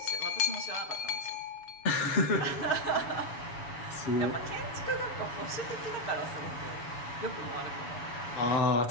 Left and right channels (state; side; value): late; right; 7.1 ms